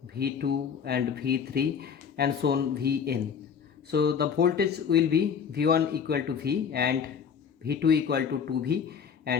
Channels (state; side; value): quieter; right; 7.0 dB